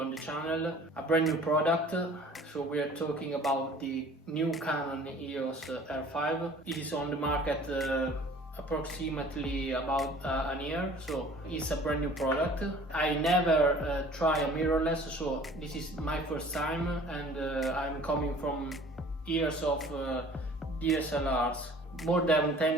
the channel a brand new product. So we are talking about the new Canon Eos R5. It is on the market approximately about an year, so it's a brand new product. I never try a mirrorless, so this is my first time, and I'm coming from years of DSLRs, more than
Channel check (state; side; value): normal; both; correlation 0.49